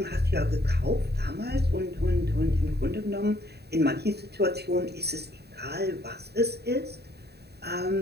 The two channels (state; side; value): late; left; 0.48 ms